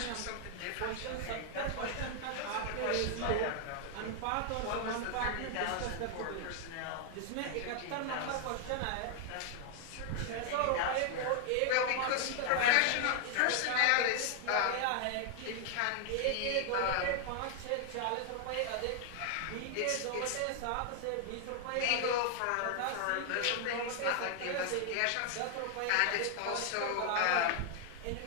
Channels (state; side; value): different; both; correlation 0.00